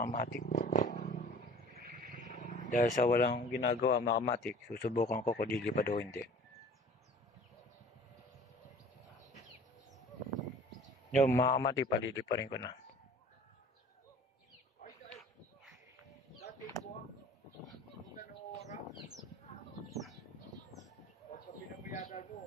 kamati. Dahil sa walang ginagawa mga kamati, susubukan ko kung lilipad o hindi. Yung mga kamati, palidi pa rin ko na.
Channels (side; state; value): both; normal; correlation 0.47